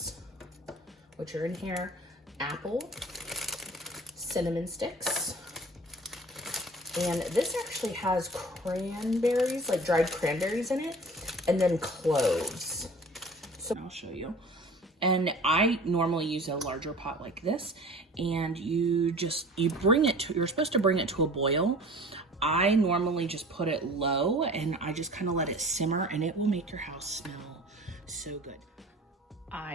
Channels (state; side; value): normal; both; correlation 0.44